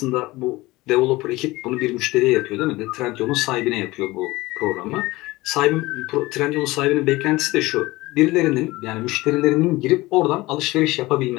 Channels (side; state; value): right; quieter; 20.0 dB